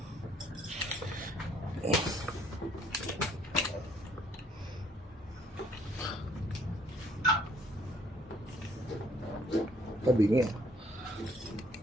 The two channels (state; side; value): normal; both; correlation 0.63